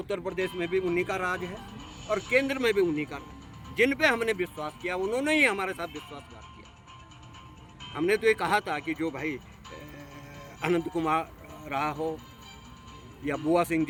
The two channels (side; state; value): both; identical; correlation 1.00